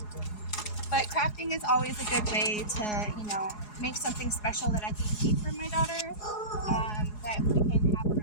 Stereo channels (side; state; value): right; late; 4.8 ms